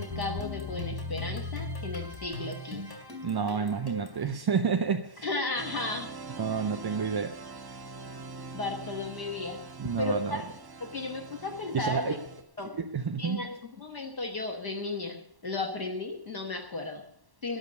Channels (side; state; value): left; late; 1.1 ms